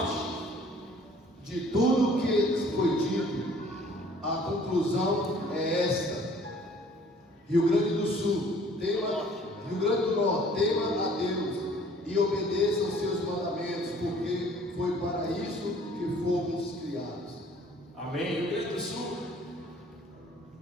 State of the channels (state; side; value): normal; both; correlation 0.55